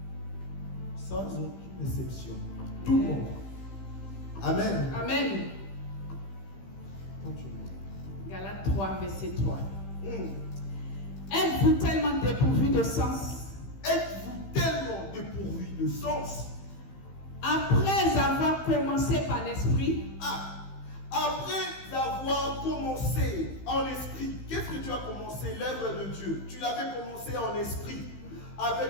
sans aucune exception. Tout le monde. Amen. Amen. Continue. Galates 3, verset 3. Êtes-vous tellement dépourvu de sens? Êtes-vous tellement dépourvu de sens? Après avoir commencé par l'esprit, Après avoir commencé en esprit, qu'est-ce que tu as commencé? L'œuvre de Dieu. Tu l'avais commencé en esprit,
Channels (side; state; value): right; late; 15 ms